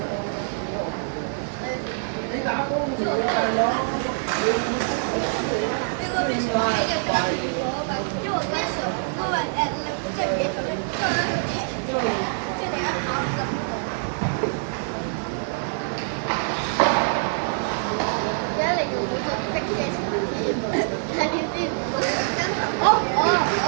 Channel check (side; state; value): left; silent; 62 dB below the other